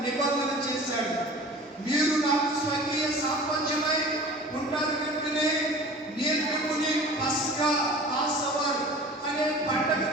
నిబంధన చేశాడు. మీరు నాకు స్వకీయ సాపంచమై ఉంటారు కనుకనే నేను మిమ్మల్ని పస్కా పాసవర్ అనే పండగ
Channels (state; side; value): normal; both; correlation 0.41